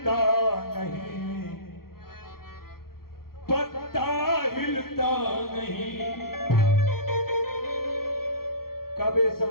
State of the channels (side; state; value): right; late; 0.94 ms